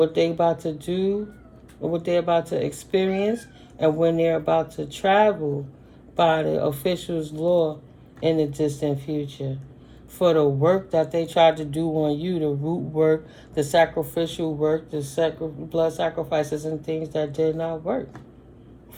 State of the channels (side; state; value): both; identical; correlation 1.00